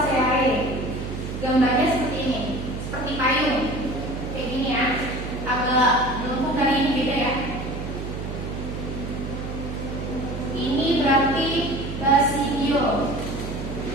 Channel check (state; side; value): noise; right; hum, 6 dB below the sound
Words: Gambarnya seperti ini, seperti payung, kayak gini ya. Agak melengkung dari ini, beda ya. Ini berarti Basidio